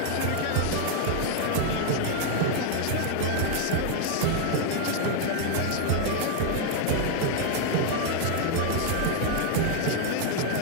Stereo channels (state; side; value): different; both; correlation 0.00